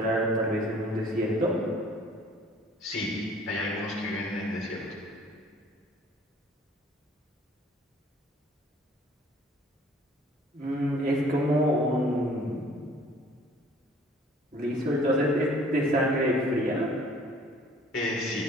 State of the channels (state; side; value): normal; both; correlation 0.54